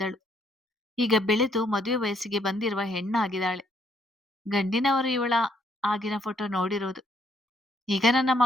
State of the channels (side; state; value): both; normal; correlation 0.70